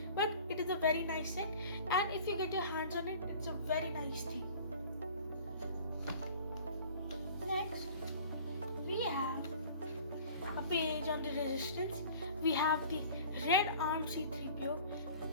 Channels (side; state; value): both; inverted; correlation -0.46